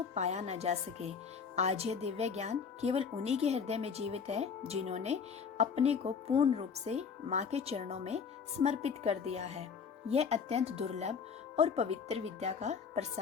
पाया न जा सके। आज यह दिव्य ज्ञान केवल उन्हीं के हृदय में जीवित है जिन्होंने अपने को पूर्ण रूप से माँ के चरणों में समर्पित कर दिया है। यह अत्यंत दुर्लभ और पवित्र विद्या का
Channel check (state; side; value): quieter; right; 6.2 dB